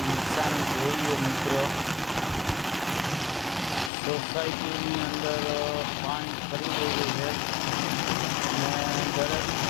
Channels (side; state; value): right; drops out; at 3.9 s